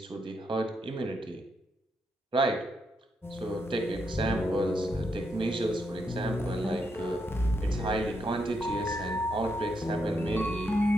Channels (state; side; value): normal; both; correlation 0.80